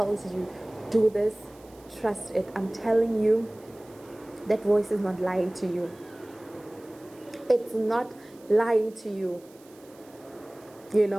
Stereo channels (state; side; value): noise; right; hiss, 27 dB below the sound